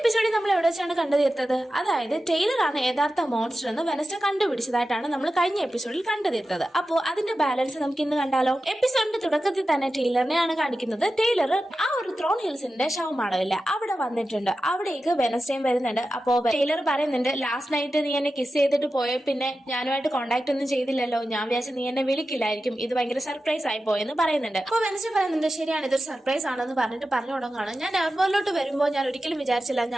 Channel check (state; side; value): normal; both; correlation 0.92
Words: നമ്മൾ എവിടെ വെച്ചാണ് കണ്ടു തീർത്തത്? അതായത് ടൈലർ ആണ് യഥാർത്ഥ മോൺസ്റ്റർ എന്ന് വെനസ്ഡേ കണ്ടുപിടിച്ചതായിട്ടാണ് നമ്മൾ കഴിഞ്ഞ എപ്പിസോഡിൽ കണ്ടു തീർത്തത്. അപ്പോ അതിന്റെ ബാലൻസ് നമുക്ക് ഇന്ന് കണ്ടാലോ. എപ്പിസോഡിന്റെ തുടക്കത്തിൽ തന്നെ ടൈലറിനെയാണ് കാണിക്കുന്നത്. ടൈലർ ആ ഒരു ത്രോൺ ഹിൽസിന്റെ ശവമാണമില്ല അവിടെ വന്നിട്ടുണ്ട്. അവിടേക്ക് വെനസ്ഡേയും വരുന്നുണ്ട്. അപ്പോ ടൈലർ പറയുന്നുണ്ട്, ലാസ്റ്റ് നൈറ്റ് നീ എന്നെ കിസ് ചെയ്തിട്ട് പോയ പിന്നെ ഞാനുമായിട്ട് കോണ്ടാക്ട് ഒന്നും ചെയ്തില്ലല്ലോ, ഞാൻ വിചാരിച്ചു നീ എന്നെ വിളിക്കില്ലായിരിക്കും, ഇത് ഭയങ്കര സർപ്രൈസ് ആയി പോയെന്ന് പറയുന്നുണ്ട്. അപ്പൊ വെനസ്ഡേ പറയുന്നുണ്ട്, ശരിയാണ്, ഇതൊരു സർപ്രൈസ് ആണെന്ന് പറഞ്ഞിട്ട് പറഞ്ഞു തുടങ്ങുകയാണ്. ഞാൻ എയർപോർട്ടിലോട്ട് വരുമ്പോൾ ഞാൻ ഒരിക്കലും വിചാരിച്ചില്ല